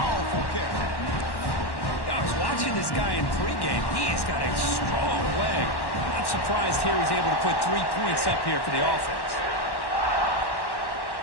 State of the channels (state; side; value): late; right; 1.1 ms